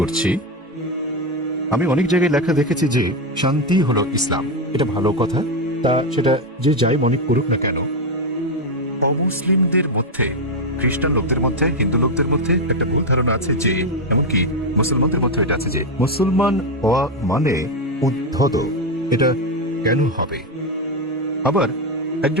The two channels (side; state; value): both; normal; correlation 0.07